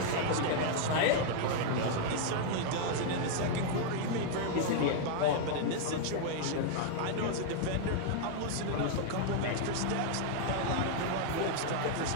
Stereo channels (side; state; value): both; different; correlation -0.01